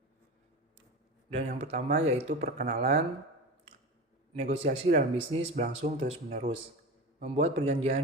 Dan yang pertama yaitu perkenalan. Negosiasi dalam bisnis berlangsung terus-menerus. Membuat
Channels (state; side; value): normal; both; correlation 0.27